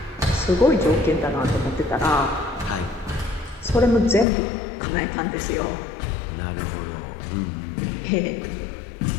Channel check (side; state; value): right; drops out; at 4.2 s